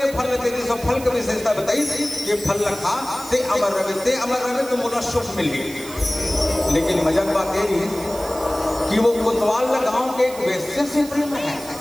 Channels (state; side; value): noise; right; hiss, 15 dB below the sound